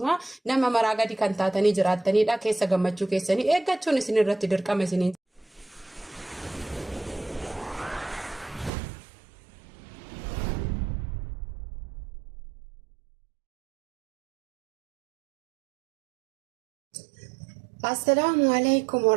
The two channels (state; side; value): drops out; left; at 8.7 s